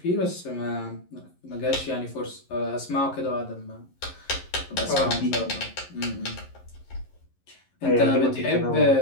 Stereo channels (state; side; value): late; right; 11 ms